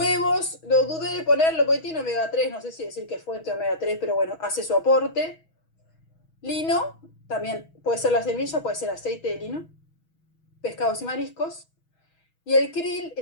lo dudé de ponerlo porque tiene omega 3, no sé si decir que es fuente de omega 3, pero bueno, hace su aporte. Lino, también puede ser la semilla, puede ser aceite de lino. Pescados y mariscos. Y el krill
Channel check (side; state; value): right; late; 6.2 ms